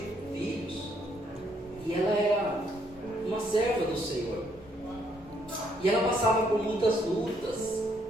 filhos, e ela era uma serva do Senhor, e ela passava por muitas lutas,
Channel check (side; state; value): both; normal; correlation 0.70